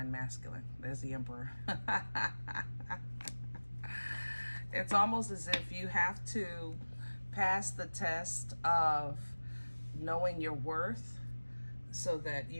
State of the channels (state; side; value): inverted; both; correlation -1.00